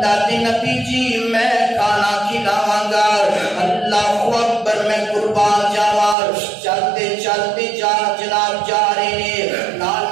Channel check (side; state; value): left; drops out; at 6.2 s